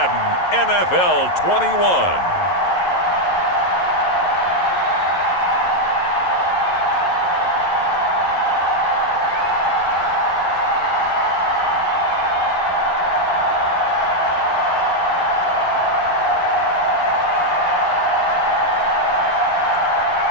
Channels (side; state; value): right; late; 11 ms